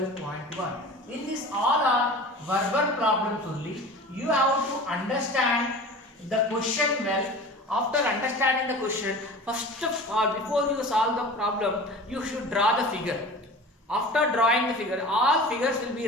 In this all are verbal problems only. You have to understand the question well. After understanding the question, first of all, before you solve the problem, you should draw the figure. After drawing the figure, all figures will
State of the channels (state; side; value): normal; both; correlation 0.38